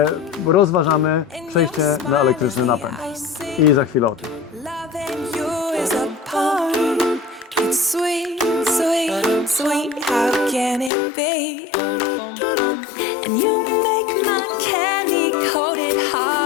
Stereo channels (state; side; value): drops out; right; at 10.9 s